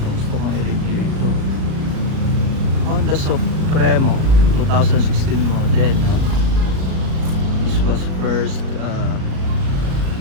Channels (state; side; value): late; left; 37 ms